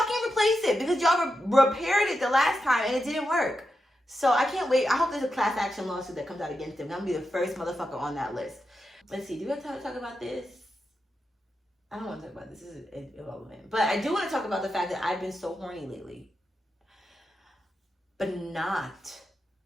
replace it, because y'all repaired it the last time and it didn't work. So I can't wait. I hope there's a class action lawsuit that comes out against them. I'm gonna be the first motherfucker on that list. Let's see, do we have time to talk about this? I don't want to talk about this. This is irrelevant. But I do want to talk about the fact that I've been so horny lately. But not.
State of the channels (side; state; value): both; normal; correlation 0.88